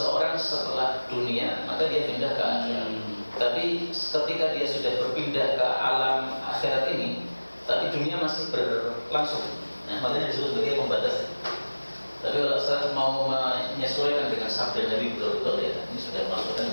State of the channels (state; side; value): inverted; both; correlation -1.00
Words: setelah dunia maka dia pindah ke akhirat. Tapi ketika dia sudah berpindah ke alam akhirat ini, tapi dunia masih berlangsung. Nah, makanya disebut sebagai pembatas. Tapi kalau saya mau menyesuaikan dengan sabda Nabi betul-betul, ya ini sudah